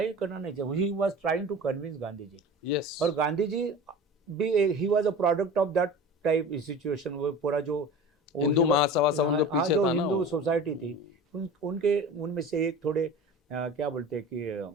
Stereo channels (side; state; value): both; normal; correlation 0.36